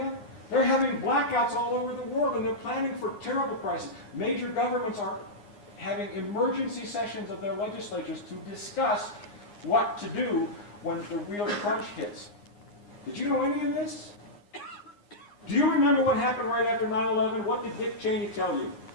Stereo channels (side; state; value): right; late; 9.7 ms